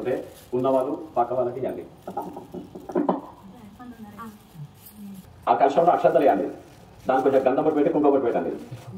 ఉన్నవాళ్ళు పక్క వాళ్ళకి ఇవ్వండి. ఆ కలశంలో అక్షతలు వేయండి. దాని కొంచెం గంధం బొట్టు పెట్టి కుంకుమ బొట్టు పెట్టండి.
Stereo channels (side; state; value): both; identical; correlation 1.00